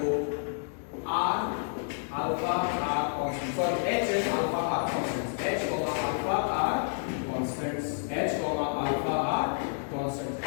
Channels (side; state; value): right; silent; 58 dB below the other